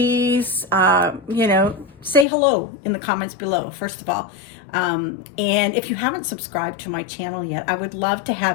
you know, say hello in the comments below, first of all. And if you haven't subscribed to my channel yet, I would love to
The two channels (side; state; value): right; drops out; at 2.2 s